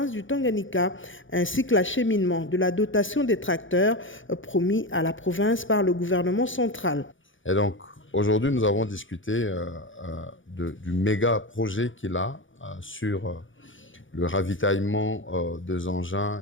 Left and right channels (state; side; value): late; right; 0.56 ms